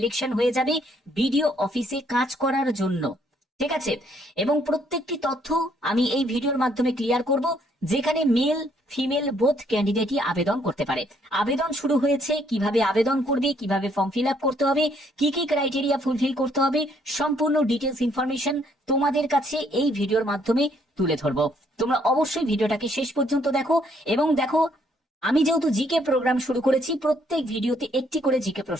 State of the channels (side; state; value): both; normal; correlation 0.68